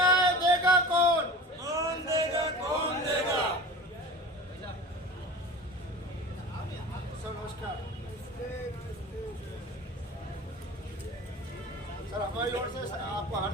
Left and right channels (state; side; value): normal; both; correlation 0.36